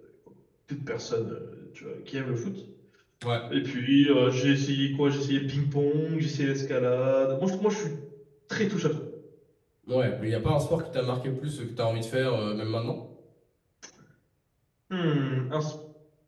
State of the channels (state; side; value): identical; both; correlation 1.00